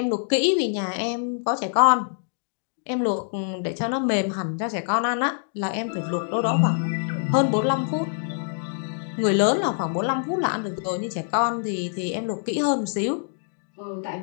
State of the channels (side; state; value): right; silent; digital silence